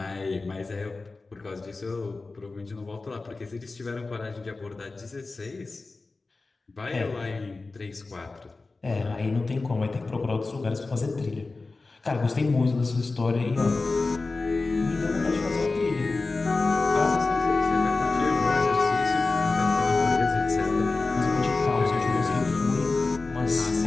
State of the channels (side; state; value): right; quieter; 3.6 dB